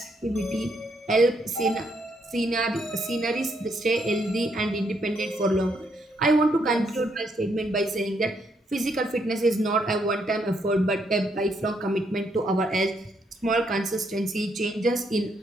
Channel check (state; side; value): normal; both; correlation 0.75